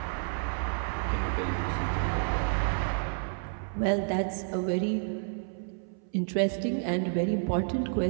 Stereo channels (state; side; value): silent; left; 58 dB below the other